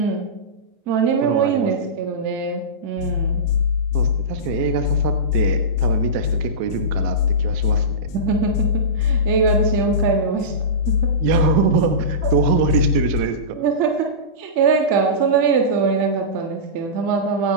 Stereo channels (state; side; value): late; left; 1.1 ms